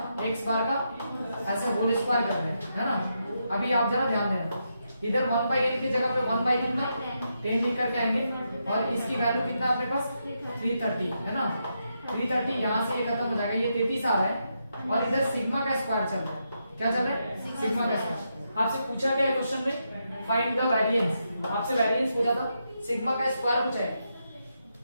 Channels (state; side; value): inverted; both; correlation -0.83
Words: एक्स बार का ऐसे होल स्क्वायर कर रहे हैं, है ना। अभी आप जरा ध्यान देना, इधर 1/n की जगह पे 1 बाई कितना 10 लिख करके आएंगे, और इसकी वैल्यू कितना अपने पास 330, है ना। 330 यहाँ से ये खत्म हो जाएगा, ये 33 आ रहा है, और इधर सिग्मा का स्क्वायर चल रहा है। क्या चल रहा है, सिग्मा का स्क्वायर। आपसे पूछा गया है क्वेश्चन में फाइंड द वेरिएंस, आपसे वेरिएंस पूछा था, सिग्मा का स्क्वायर पूछा है।